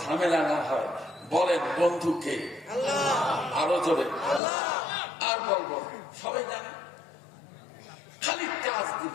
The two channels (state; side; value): drops out; right; at 4.4 s